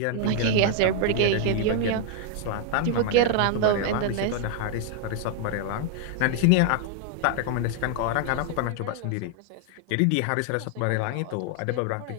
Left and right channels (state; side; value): different; both; correlation 0.00